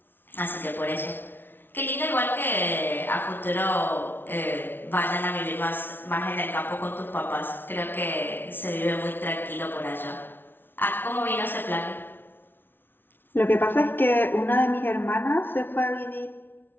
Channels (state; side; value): late; right; 0.10 ms